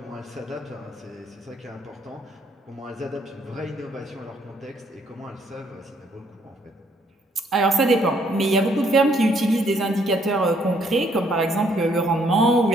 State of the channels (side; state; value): both; normal; correlation 0.68